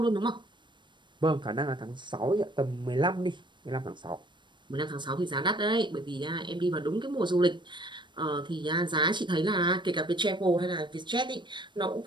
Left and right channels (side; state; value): left; late; 0.22 ms